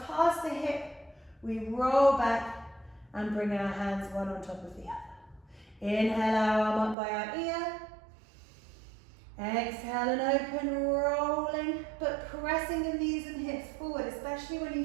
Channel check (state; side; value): drops out; left; at 7.0 s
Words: past the hip, we roll back and bring our hands one on top of the other. Inhale our arm up by our ear. Exhale and open, rolling, but pressing the knees and hips forward, especially when